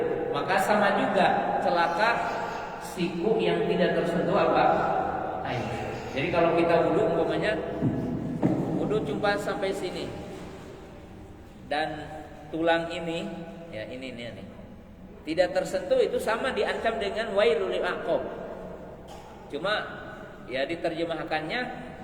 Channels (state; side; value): identical; both; correlation 1.00